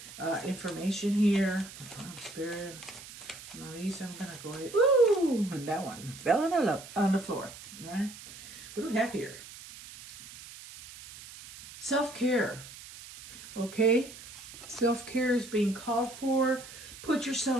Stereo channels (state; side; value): noise; right; hiss, 16 dB below the sound